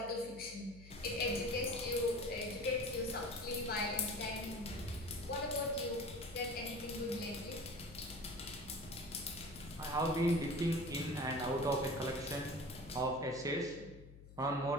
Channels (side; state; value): left; noise; hum, 17 dB below the sound